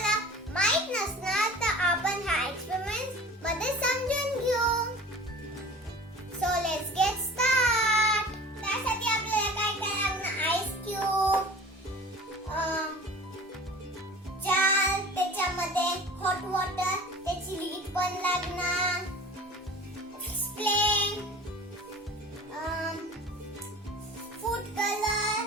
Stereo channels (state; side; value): normal; both; correlation 0.41